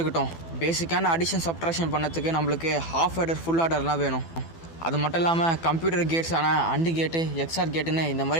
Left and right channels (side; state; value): right; late; 12 ms